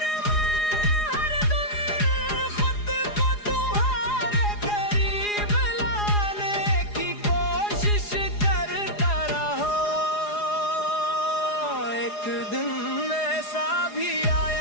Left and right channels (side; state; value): right; late; 4.8 ms